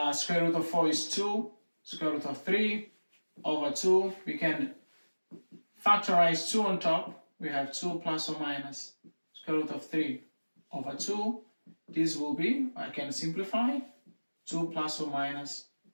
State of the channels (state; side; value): inverted; both; correlation -1.00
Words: Square root of 4 is 2. Square root of 3 over 2. We can factorize 2 on top. We have 2 plus or minus square root of 3 over 2. This will be, I can simplify, 2 plus or minus